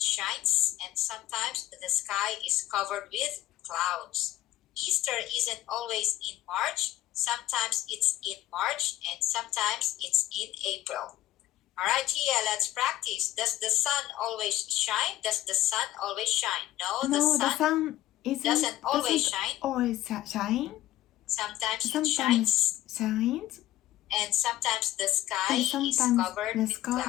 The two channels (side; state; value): right; quieter; 14.7 dB